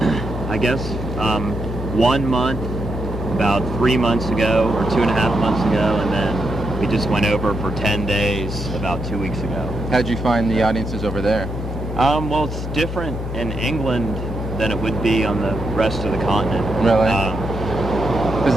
I guess, 1 month, about 3 months ago, or 2.5 months ago, and then we just went over for 10 days about 2 weeks ago. How'd you find the audiences over there? Well, it's different in England than it would be on the rest of the continent. Really? Because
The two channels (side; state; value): both; normal; correlation 0.81